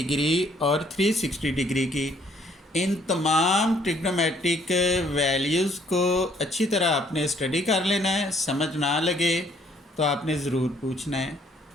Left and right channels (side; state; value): both; normal; correlation 0.64